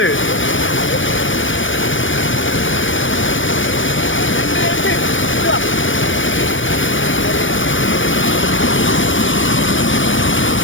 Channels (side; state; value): right; late; 0.56 ms